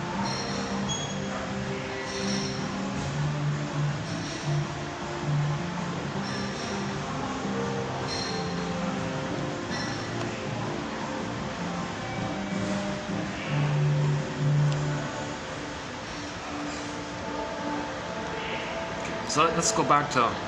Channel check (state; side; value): identical; both; correlation 1.00